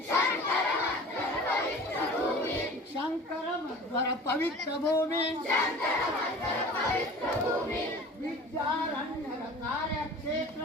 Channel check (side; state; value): both; normal; correlation 0.41